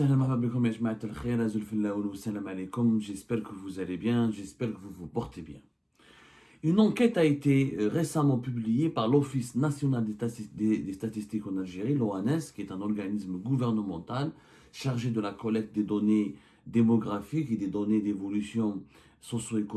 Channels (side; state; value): both; identical; correlation 1.00